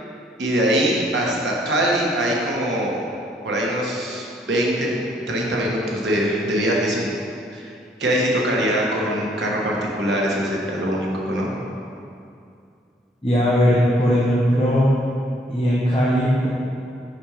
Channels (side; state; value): both; normal; correlation 0.64